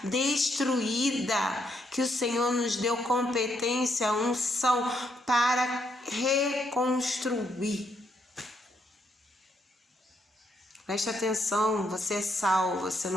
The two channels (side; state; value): both; normal; correlation 0.75